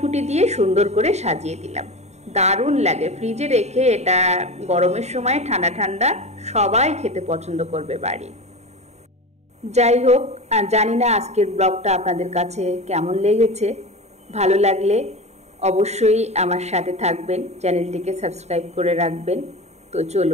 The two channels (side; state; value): left; late; 0.32 ms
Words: দিয়ে সুন্দর করে সাজিয়ে দিলাম। দারুণ লাগে ফ্রিজে রেখে, এটা গরমের সময় ঠান্ডা ঠান্ডা সবাই খেতে পছন্দ করবে বাড়ি। যাই হোক, আর জানি না আজকের ব্লগটা আপনাদের কাছে কেমন লেগেছে। ভালো লাগলে অবশ্যই আমার সাথে থাকবেন, চ্যানেলটিকে সাবস্ক্রাইব করে রাখবেন। তো